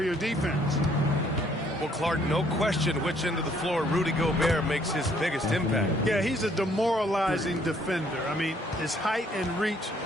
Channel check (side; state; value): both; normal; correlation 0.65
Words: defense. Well, Clark, no question which end of the floor Rudy Gobert makes his biggest impact. Yeah, he's a demoralizing defender. I mean, his height and reach